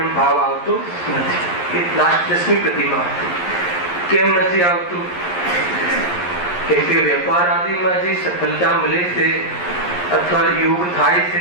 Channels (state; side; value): late; right; 11 ms